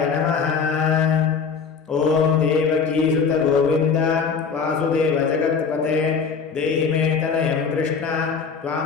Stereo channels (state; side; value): quieter; right; 5.8 dB